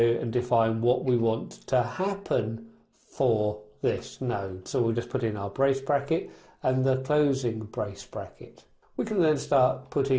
and define what we want to happen for this node. So we'll just put in our brace bracket and the closing brace bracket. We can then start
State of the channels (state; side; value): identical; both; correlation 1.00